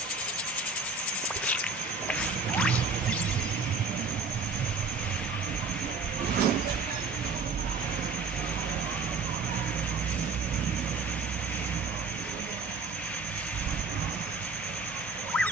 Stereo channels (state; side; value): quieter; left; 4.2 dB